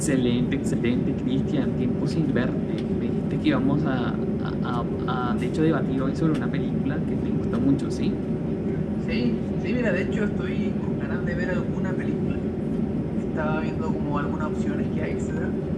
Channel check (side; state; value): both; identical; correlation 1.00